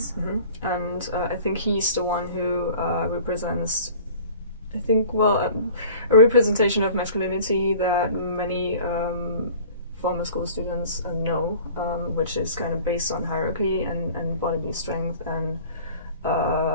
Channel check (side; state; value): both; inverted; correlation -0.45